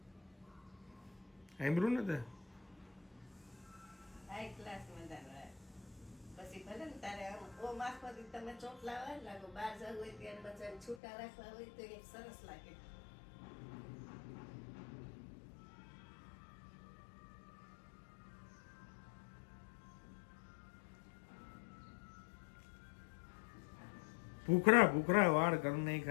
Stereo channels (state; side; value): drops out; right; at 11.0 s